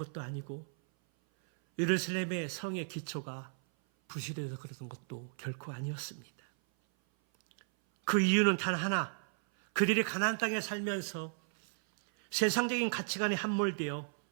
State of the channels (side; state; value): left; silent; 55 dB below the other